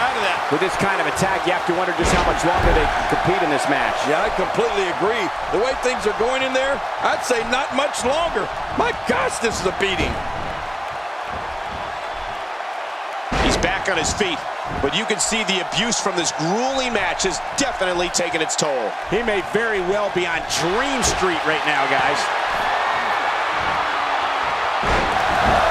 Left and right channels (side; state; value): both; identical; correlation 1.00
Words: of that. With this kind of attack, you have to wonder just how much longer they can compete in this match. Yeah, I completely agree. The way things are going in there, I'd say not much longer. My gosh, this is a beating. He's back on his feet, but you can see the abuse from this grueling match has definitely taken its toll. He may very well be on Dream Street right now, guys.